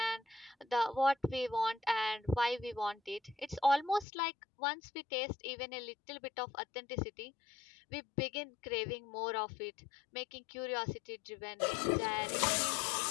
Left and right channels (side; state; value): right; drops out; at 4.0 s